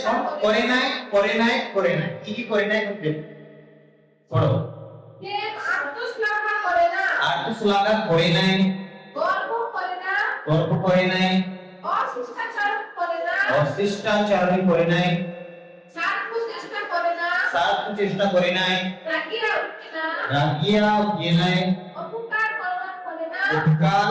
করে নাই করে নাই করে নাই, কি কি করে নাই বলতে পড়ো। প্রেম আত্মশ্লাঘা করে না আর তো শ্লাঘা করে নাই, গর্ব করে না গর্ব করে নাই, অশিষ্টাচার করে না অশিষ্টাচারণ করে নাই, স্বার্থ চেষ্টা করে না স্বার্থ চেষ্টা করে নাই, রাগিয়া উঠে না রাগিয়া গিয়ে নাই, অপকার কল্যাণ করে না উপকার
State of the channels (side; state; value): both; identical; correlation 1.00